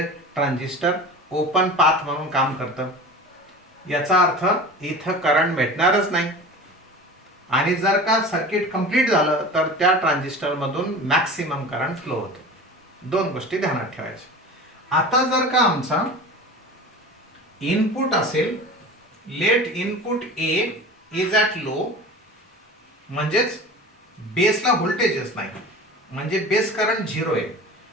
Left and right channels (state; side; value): normal; both; correlation 0.35